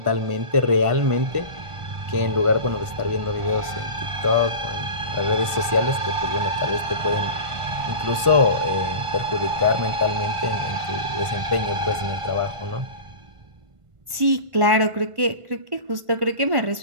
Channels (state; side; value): late; left; 1.5 ms